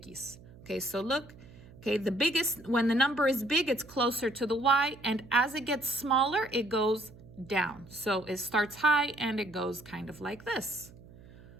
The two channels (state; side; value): noise; right; hum, 21 dB below the sound